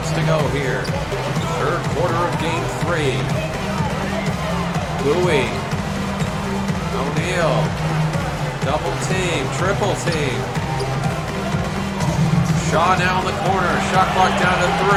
to go here. Third quarter of game 3. Bowie. O'Neal. Double team, triple team. Shaw now in the corner. Shot clock down to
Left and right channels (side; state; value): both; identical; correlation 1.00